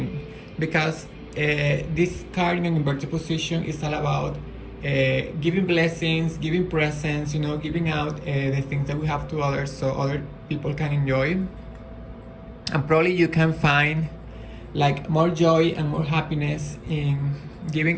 because this card in an inverted position is all about giving blessings, giving presents, giving out the things that we have to others so other people can enjoy. And probably you can find like more joy and more happiness in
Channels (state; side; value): identical; both; correlation 1.00